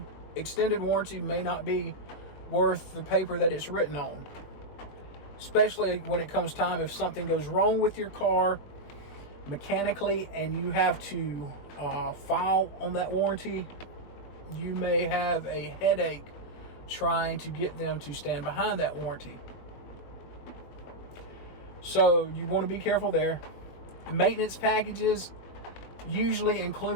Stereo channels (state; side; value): late; right; 21 ms